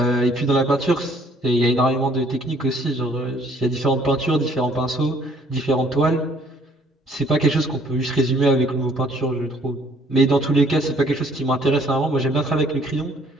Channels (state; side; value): normal; both; correlation 0.61